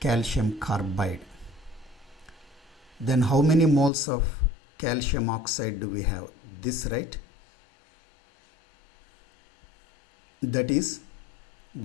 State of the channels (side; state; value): right; drops out; at 3.9 s